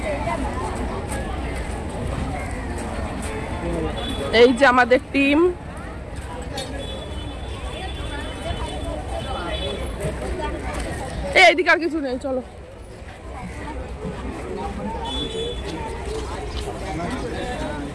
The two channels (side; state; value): both; identical; correlation 1.00